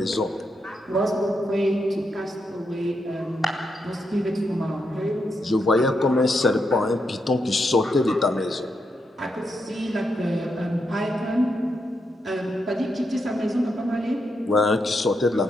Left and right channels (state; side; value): normal; both; correlation 0.82